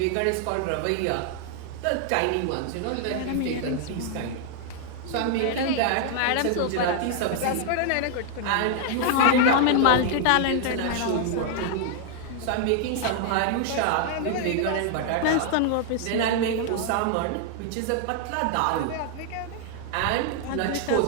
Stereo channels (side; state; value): both; different; correlation 0.00